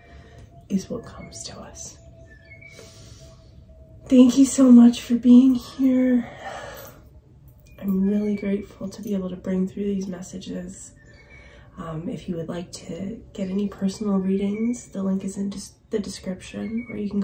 is what comes to us. Thank you so much for being here. I'm really grateful to be able to bring through these messages. If you would like to get any personal readings, the link is in the description, or you can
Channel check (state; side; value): identical; both; correlation 1.00